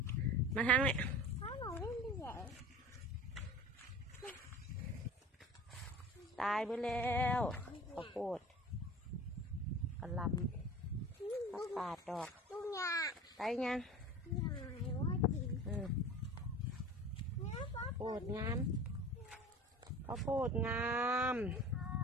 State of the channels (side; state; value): both; normal; correlation 0.38